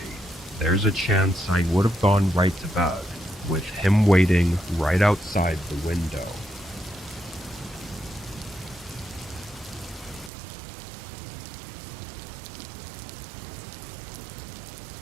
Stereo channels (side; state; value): left; drops out; at 10.3 s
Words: there's a chance I would have gone right to bed, with him waiting right outside the window.